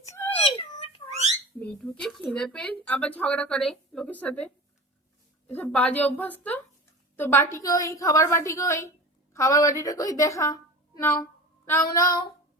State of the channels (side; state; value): both; normal; correlation 0.34